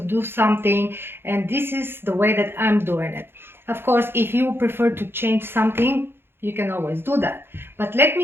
do something, and this is the way that I'm doing it. Of course, if you prefer to change something, you can always do that, but let me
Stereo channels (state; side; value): late; left; 0.11 ms